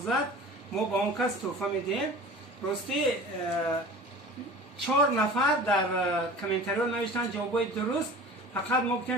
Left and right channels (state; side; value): normal; both; correlation 0.40